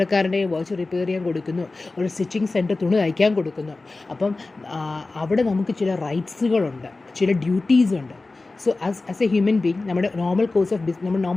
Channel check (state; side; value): quieter; right; 3.4 dB